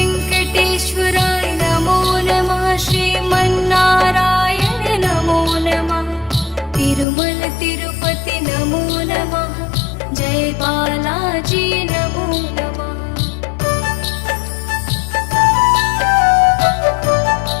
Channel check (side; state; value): right; drops out; at 7.1 s